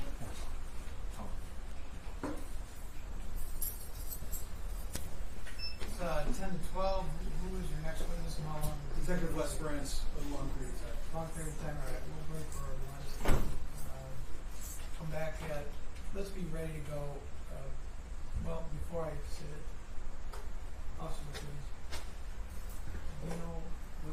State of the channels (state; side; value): identical; both; correlation 1.00